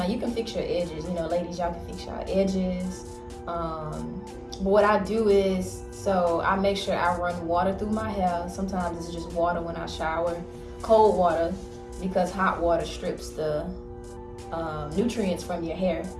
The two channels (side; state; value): both; identical; correlation 1.00